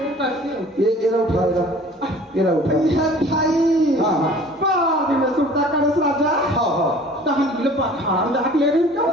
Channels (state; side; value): normal; both; correlation 0.48